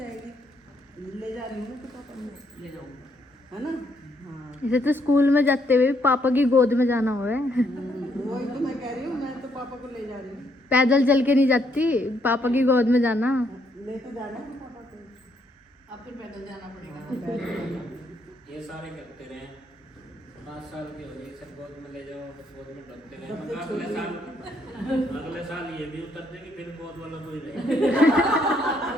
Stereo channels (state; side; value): normal; both; correlation 0.72